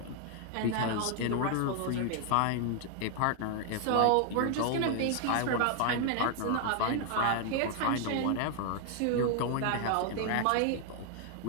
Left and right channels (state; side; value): different; both; correlation 0.00